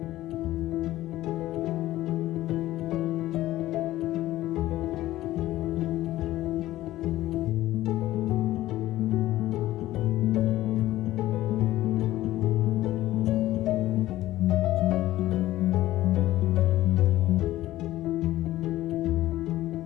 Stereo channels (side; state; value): right; quieter; 15.4 dB